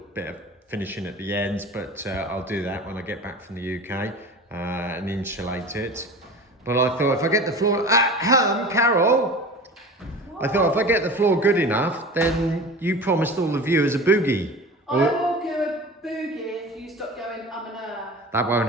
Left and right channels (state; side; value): normal; both; correlation 0.36